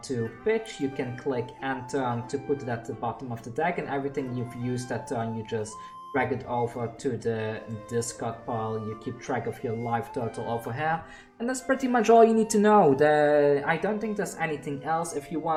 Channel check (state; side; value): identical; both; correlation 1.00